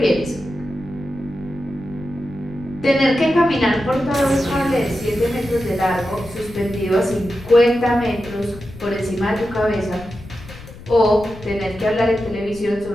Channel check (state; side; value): noise; left; rumble, 17 dB below the sound